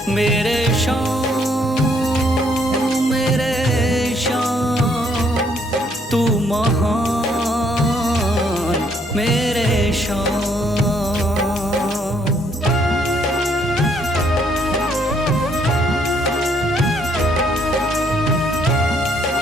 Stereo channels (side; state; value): both; normal; correlation 0.68